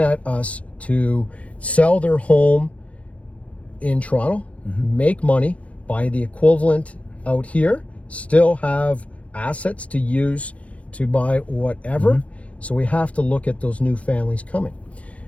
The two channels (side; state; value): right; late; 0.064 ms